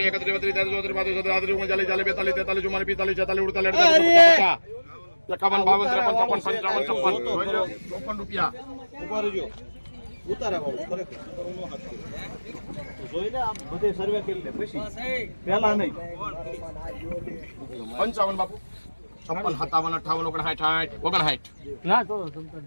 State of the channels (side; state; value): both; inverted; correlation -1.00